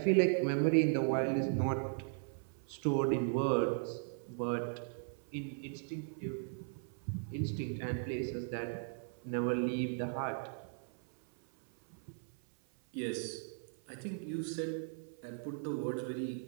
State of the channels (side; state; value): left; silent; 53 dB below the other